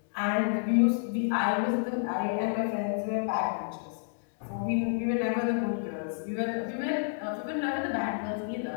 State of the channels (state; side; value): silent; right; digital silence